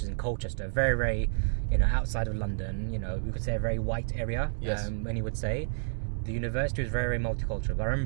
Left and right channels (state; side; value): silent; left; 58 dB below the other